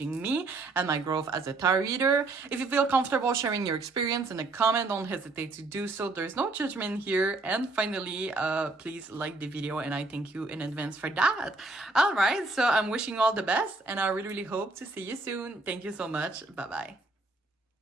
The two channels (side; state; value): left; quieter; 3.3 dB